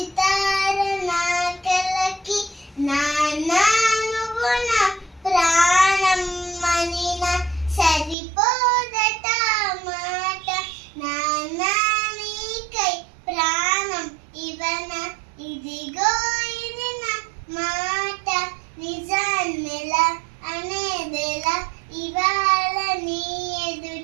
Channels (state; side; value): drops out; left; at 8.2 s